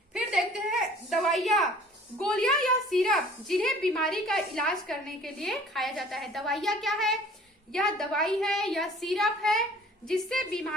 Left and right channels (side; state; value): both; normal; correlation 0.51